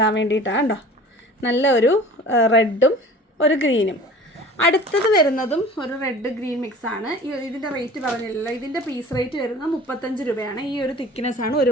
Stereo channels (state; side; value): normal; both; correlation 0.43